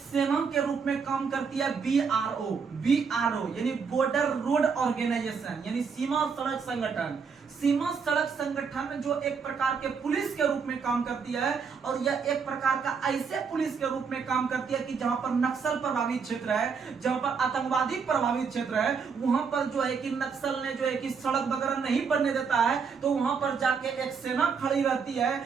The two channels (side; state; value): left; quieter; 5.8 dB